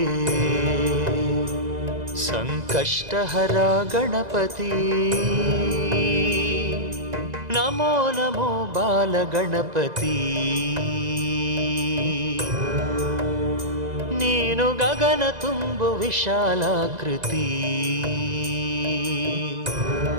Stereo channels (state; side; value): late; left; 2.0 ms